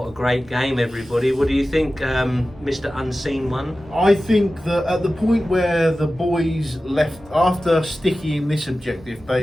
a great game, everybody. What do you think, Mr. Unseen One? I think that at the point where the boys left, after sticking this objective,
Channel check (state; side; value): normal; both; correlation 0.95